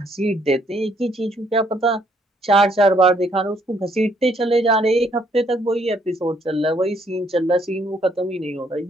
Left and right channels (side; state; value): both; normal; correlation 0.68